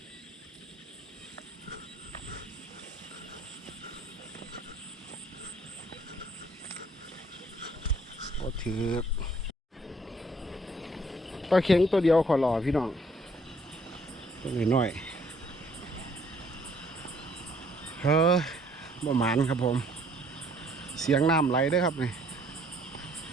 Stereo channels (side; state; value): both; normal; correlation 0.62